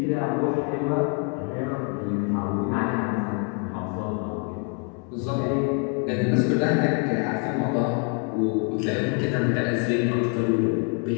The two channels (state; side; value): quieter; right; 39.3 dB